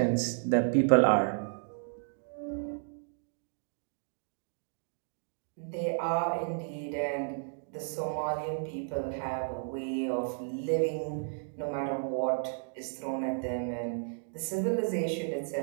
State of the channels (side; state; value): left; silent; digital silence